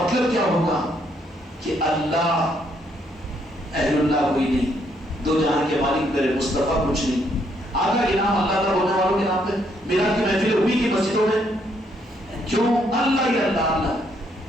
کیا ہوگا کہ اللہ اہل اللہ کوئی نہیں، دو جہاں کے مالک میرے مصطفیٰ کچھ نہیں. آدھا انعام اللہ کا بولنے والوں کے نام پہ میرا کی محفل ہوئی کی مسجدوں میں. کیوں؟ اللہ ہی اللہ اللہ.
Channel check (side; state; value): both; normal; correlation 0.72